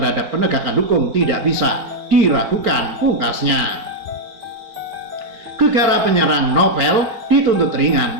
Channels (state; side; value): late; left; 4.4 ms